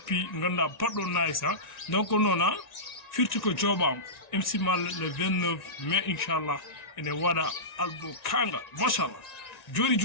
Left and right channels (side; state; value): right; late; 1.9 ms